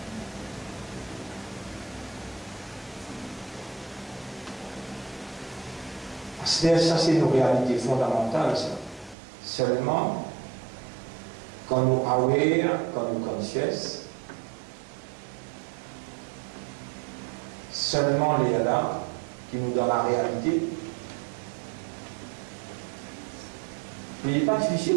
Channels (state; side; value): drops out; left; at 9.2 s